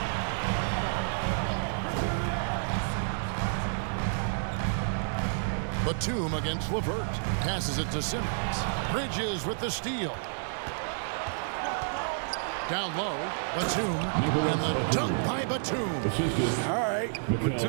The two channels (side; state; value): left; silent; digital silence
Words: Batum against LeVert. Passes it to Simmons. Bridges with the steal. Down low, Batum, and the dunk by Batum. All right,